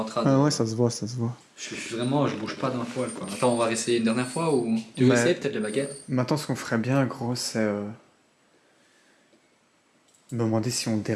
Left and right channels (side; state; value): both; identical; correlation 1.00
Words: train de... Ah ouais, ça se voit, ça se voit. Je bouge pas d'un poil, quoi. Attends, on va essayer une dernière fois ou... Tu veux essayer peut-être les baguettes? Maintenant, ce qu'on ferait bien, gros, c'est... me demander si on